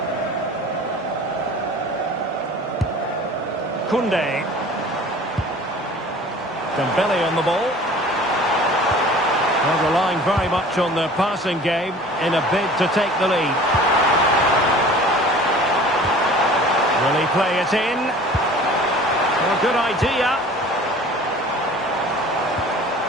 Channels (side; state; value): both; normal; correlation 0.45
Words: Koundé. Dembele on the ball. Well, relying very much on their passing game in a bid to take the lead. Will he play it in? Well, good idea.